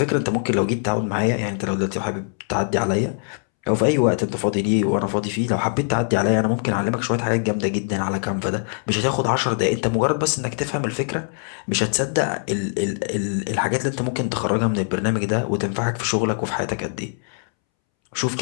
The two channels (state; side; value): silent; right; 64 dB below the other